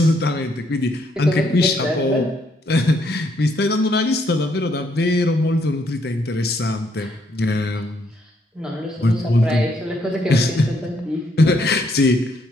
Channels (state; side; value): normal; both; correlation 0.72